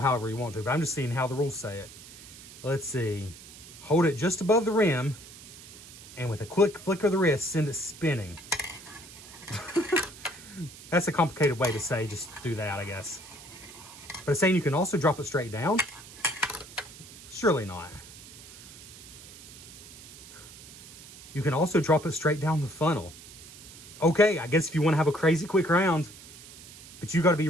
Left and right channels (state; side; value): noise; right; hiss, 17 dB below the sound